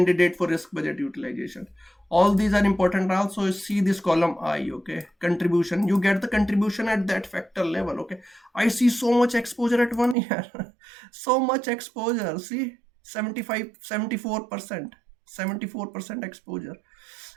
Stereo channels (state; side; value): drops out; left; at 10.2 s